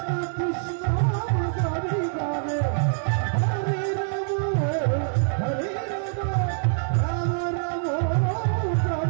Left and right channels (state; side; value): silent; left; 62 dB below the other